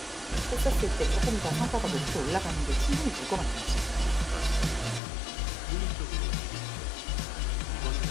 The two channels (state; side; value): drops out; right; at 5.0 s